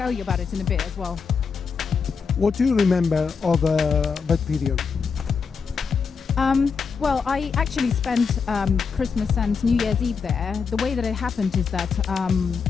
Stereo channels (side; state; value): right; quieter; 5.6 dB